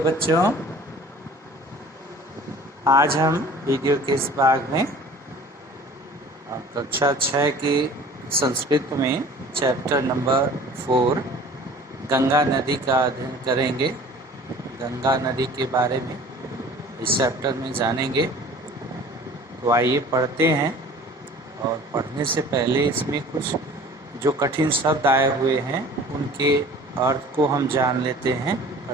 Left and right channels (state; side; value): normal; both; correlation 0.46